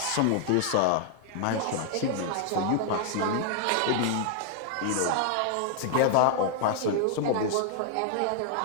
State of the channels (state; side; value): different; both; correlation 0.00